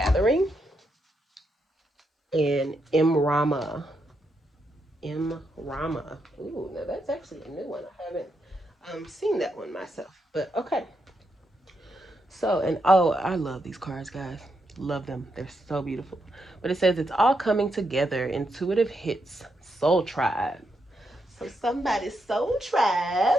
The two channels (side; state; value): both; normal; correlation 0.81